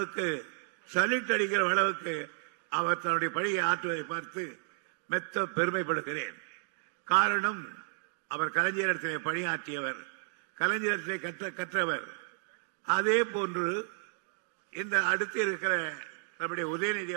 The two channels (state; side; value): silent; left; digital silence